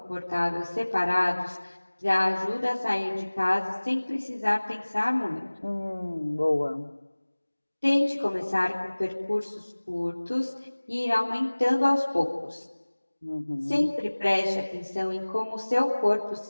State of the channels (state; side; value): inverted; both; correlation -1.00